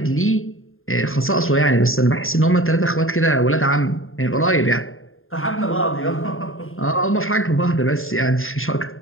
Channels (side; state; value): right; late; 0.60 ms